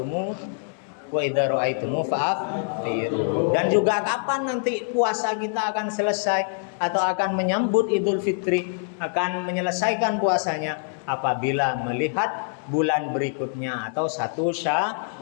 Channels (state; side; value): silent; right; 56 dB below the other